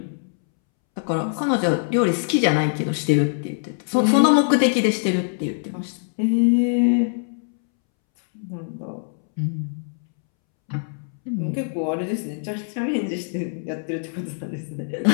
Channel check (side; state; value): right; silent; 63 dB below the other